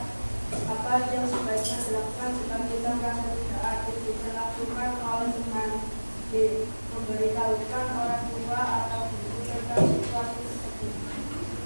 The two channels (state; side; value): inverted; both; correlation -1.00